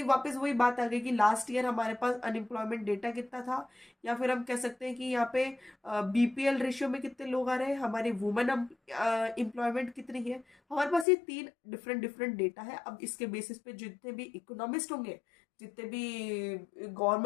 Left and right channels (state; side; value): drops out; right; at 11.1 s